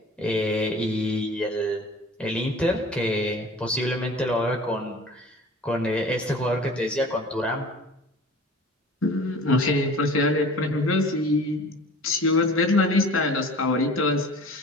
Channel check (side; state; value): both; normal; correlation 0.43